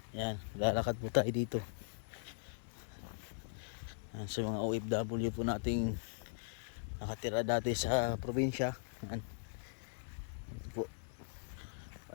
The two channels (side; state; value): right; silent; digital silence